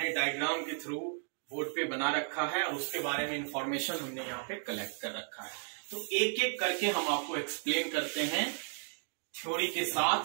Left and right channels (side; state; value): left; silent; 55 dB below the other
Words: डायग्राम के थ्रू बोर्ड पे बना रखा है और उसके बारे में इंफॉर्मेशन हमने यहाँ पे कलेक्ट कर रखा है। तो एक एक करके हम आपको एक्सप्लेन करते हैं थ्योरी के साथ